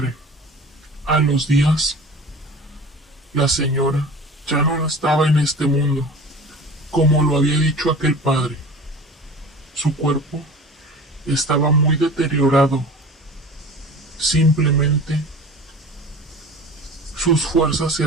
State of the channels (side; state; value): both; normal; correlation 0.39